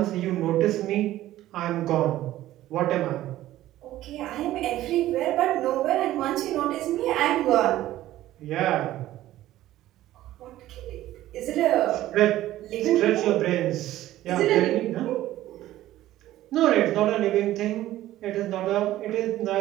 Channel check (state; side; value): quieter; left; 14.5 dB